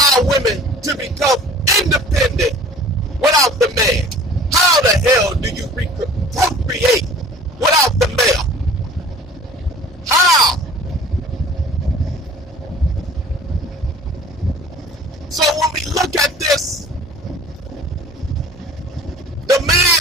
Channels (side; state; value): both; normal; correlation 0.47